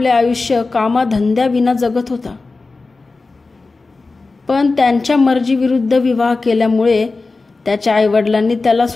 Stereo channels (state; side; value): quieter; right; 3.7 dB